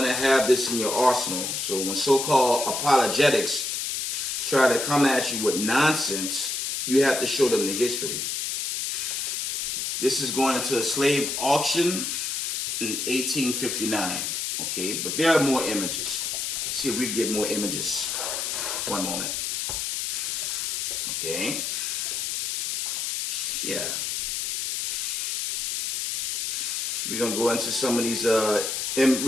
to have this in your arsenal. So when so-called apologetics try to come at you with nonsense, you have to show them the history. This is going into a slave auction in 1859, okay? But there are more images. Let's see if we can get more images. One moment. Okay. Yeah. We're going to go into some of these, we're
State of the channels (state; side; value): noise; left; hiss, 1 dB below the sound